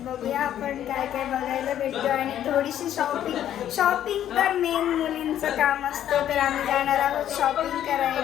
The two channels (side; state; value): right; quieter; 11.0 dB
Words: बघूया आपण काय काय बघायला भेटतो आणि थोडीशी शॉपिंग तर मेन मुलींचं काम असतं. तर आम्ही जाणार आहोत शॉपिंग